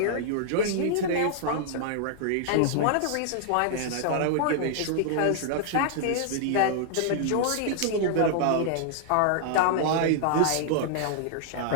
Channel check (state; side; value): different; both; correlation -0.01